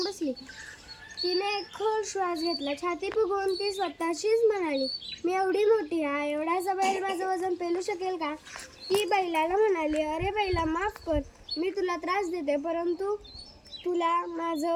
बसली. तिने एक खोल श्वास घेतला. छाती फुगवून ती स्वतःशीच म्हणाली, मी एवढी मोठी आहे, एवढासा बैल माझं वजन पेलू शकेल का? ती बैलाला म्हणाली, अरे बैला, माफ कर, मी तुला त्रास देते, परंतु तुला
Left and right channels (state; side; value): identical; both; correlation 1.00